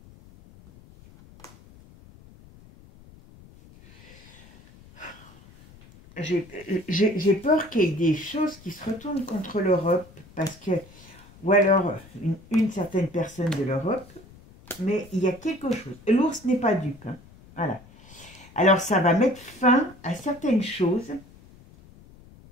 J'ai peur qu'il y ait des choses qui se retournent contre l'Europe, parce que, ou alors une certaine personne de l'Europe, mais il y a quelque chose. L'ours n'est pas dupe. Hein. Voilà. Alors ça va mettre fin à certaines choses.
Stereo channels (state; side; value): noise; left; rumble, 23 dB below the sound